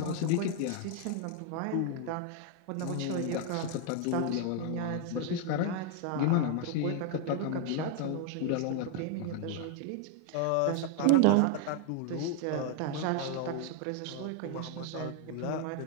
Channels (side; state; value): both; different; correlation 0.01